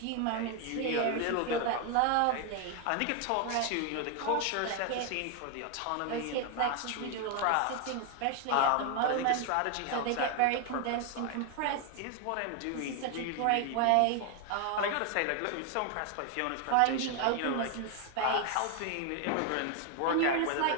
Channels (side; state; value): both; different; correlation 0.01